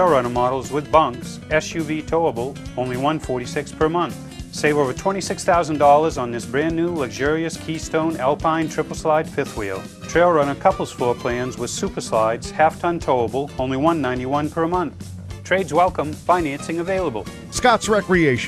Runner models with bunks, SUV towable, only $146 per month. Save over $26,000 on this brand new luxurious Keystone Alpine triple slide fifth wheel. Trail Runner couples floor plans with super slides, half-ton towable, only $191 per month. Trades welcome, financing available. Scott's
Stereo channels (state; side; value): identical; both; correlation 1.00